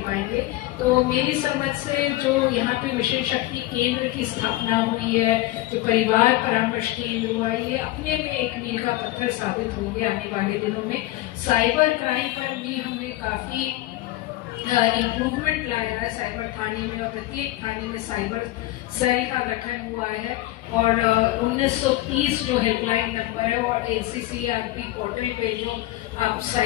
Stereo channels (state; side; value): quieter; right; 17.0 dB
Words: पाएंगे। तो मेरी समझ से जो यहाँ पे मिशन शक्ति केंद्र की स्थापना हुई है, जो परिवार परामर्श केंद्र हुआ, ये अपने में एक मील का पत्थर साबित होंगे आने वाले दिनों में। साइबर क्राइम पर भी हमने काफ़ी इम्प्रूवमेंट लाया है साइबर थाने में, और प्रत्येक थाने में साइबर सेल का गठन हुआ है और 1930 जो हेल्पलाइन नंबर है और NCCRP पोर्टल पे जो आप